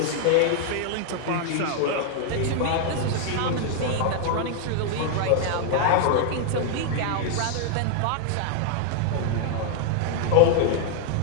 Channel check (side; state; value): both; different; correlation 0.00